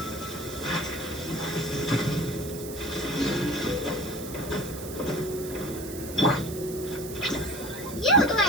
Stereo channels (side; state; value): right; noise; hiss, 12 dB below the sound